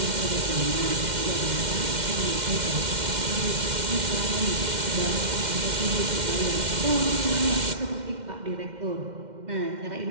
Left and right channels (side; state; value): left; late; 2.1 ms